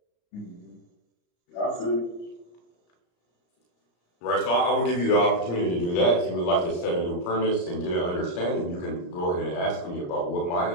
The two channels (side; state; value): right; late; 34 ms